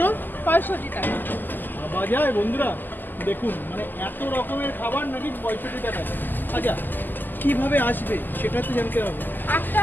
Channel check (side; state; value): right; late; 0.089 ms